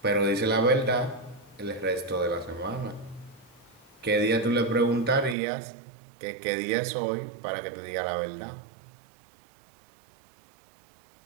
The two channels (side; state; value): left; drops out; at 5.4 s